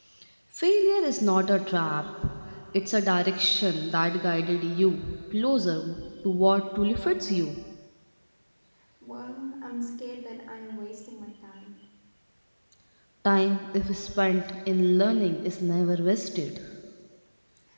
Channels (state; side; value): inverted; both; correlation -1.00